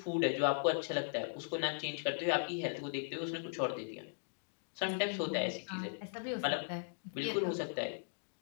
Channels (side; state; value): right; silent; digital silence